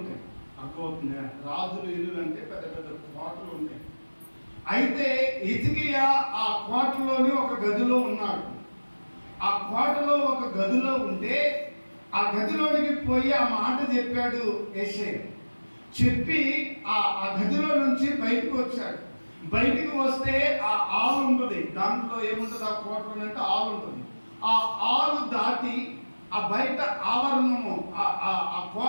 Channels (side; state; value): both; inverted; correlation -1.00